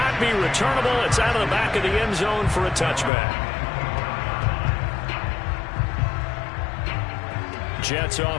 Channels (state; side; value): drops out; right; at 3.1 s